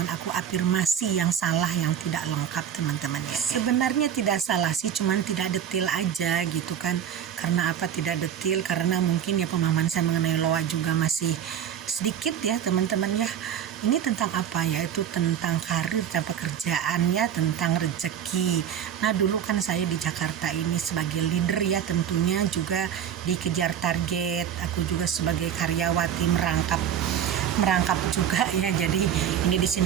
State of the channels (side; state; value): left; quieter; 9.2 dB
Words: aku afirmasi yang salah, yang tidak lengkap, teman-teman ya. Sebenarnya tidak salah sih, cuman tidak detail aja gitu kan. Karena apa tidak detail? Karena mungkin ya pemahaman saya mengenai loa juga masih sedikit ya, teman-teman ya. Ini tentang apa ya? Itu tentang karir dan pekerjaannya, tentang rezeki. Nah, dulu kan saya di Jakarta ini sebagai leader ya, tentunya juga dikejar target. Aku juga sebagai karyawati merangkap juga ya. Jadi ini di